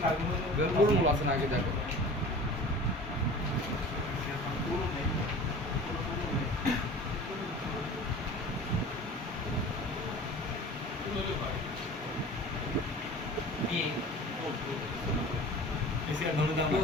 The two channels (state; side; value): normal; both; correlation 0.40